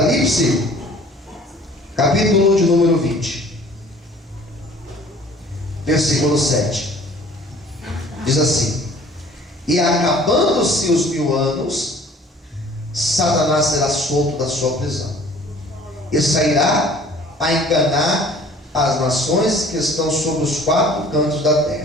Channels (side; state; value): both; normal; correlation 0.51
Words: capítulo de número 20, versículo 7. Diz assim: e acabando-se os 1000 anos, Satanás será solto da sua prisão, e sairá a enganar as nações que estão sobre os 4 cantos da